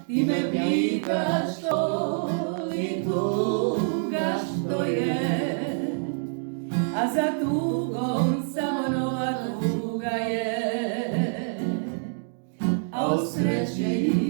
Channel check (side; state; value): left; silent; digital silence